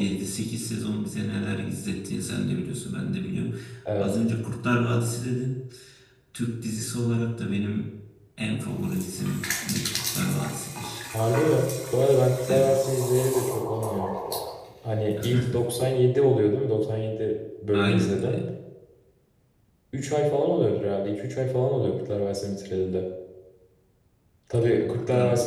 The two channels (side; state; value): both; identical; correlation 1.00